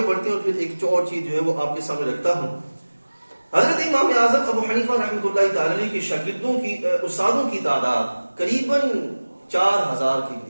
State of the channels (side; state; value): both; inverted; correlation -1.00